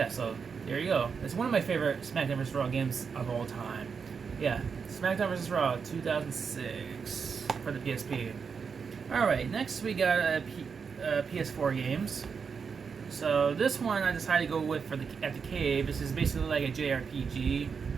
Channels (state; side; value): quieter; left; 5.9 dB